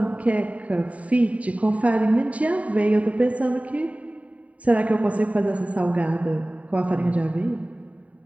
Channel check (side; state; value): left; late; 0.068 ms